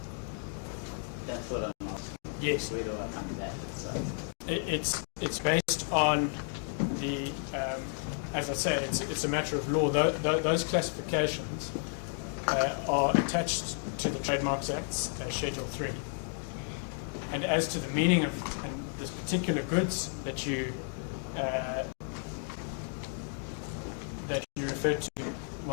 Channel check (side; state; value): right; silent; 56 dB below the other